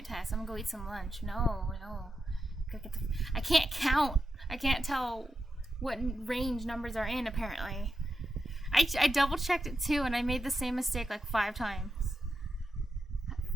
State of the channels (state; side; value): normal; both; correlation 0.87